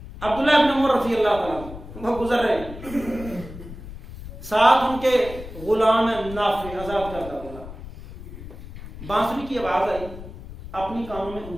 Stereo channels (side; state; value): left; noise; rumble, 13 dB below the sound